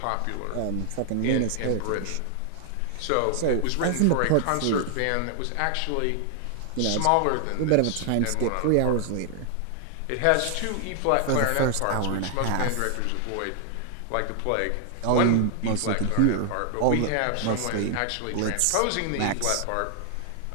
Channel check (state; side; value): different; both; correlation 0.00